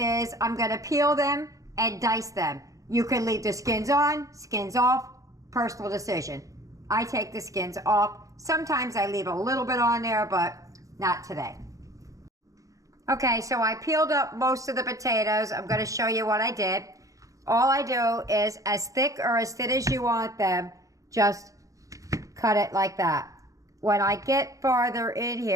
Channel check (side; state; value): left; late; 0.16 ms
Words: I'm going to peel them and dice them. You can leave the skins on, skins off, personal decision. I take the skins off. Sometimes I leave a little bit on there, but not today. Okay, so I peeled up most of the potatoes. I'm going to show you what I did. All I do is as thick or as thin as you want them, just cut it like that. When I get farther in